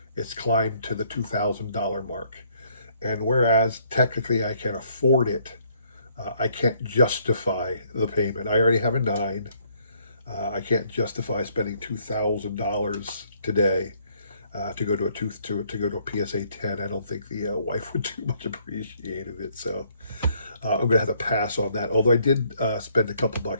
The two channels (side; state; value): both; inverted; correlation -0.66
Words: it's climbed to the $2,000 mark. And whereas technically I can afford it, I can't justify the payment. I already have a nine. I can't justify spending $2,000 today to go to a PSA 10. I don't think the wife would too much appreciate it. So I'm going to have to pass on that. Although I did spend a couple